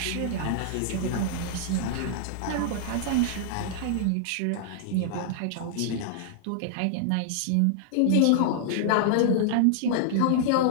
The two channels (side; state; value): both; different; correlation -0.01